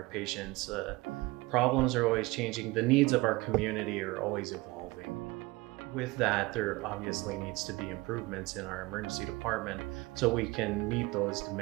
patients' problems are always changing. The needs of our community are always evolving. With that, there obviously needs to be improvements in our emergency department so we can meet those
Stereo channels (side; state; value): left; quieter; 22.2 dB